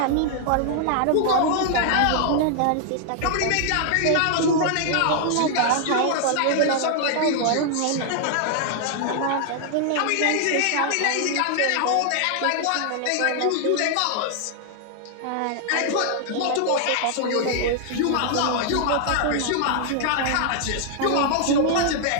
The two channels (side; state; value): both; different; correlation 0.00